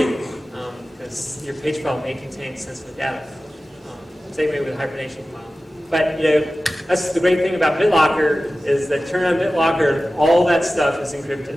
because your page file may contain sensitive data. Same way with hibernation file. But that's the great thing about BitLocker is that turn on BitLocker, all that stuff is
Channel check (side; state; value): both; normal; correlation 0.96